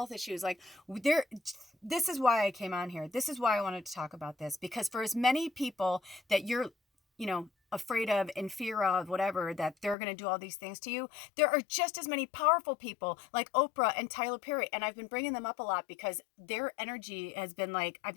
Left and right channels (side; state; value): right; drops out; at 10.0 s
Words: issues. Like, this is why I came on here. This is why I wanted to talk about this, because for as many people that you're, afraid of, in fear of, whatever, that they're going to do all these things to you, there are just as many powerful people like Oprah and Tyler Perry. And I've been bringing them up a lot because their energy has been like, I've